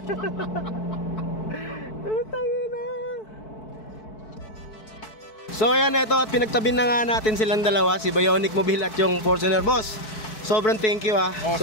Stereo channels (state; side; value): late; right; 4.6 ms